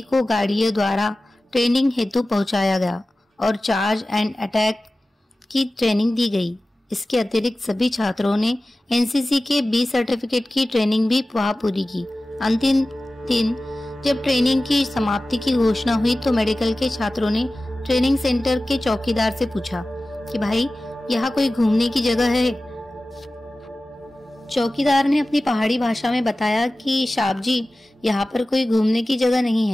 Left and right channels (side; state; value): both; normal; correlation 0.96